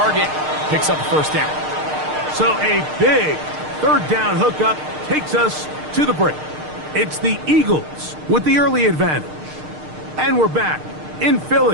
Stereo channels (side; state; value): left; late; 6.6 ms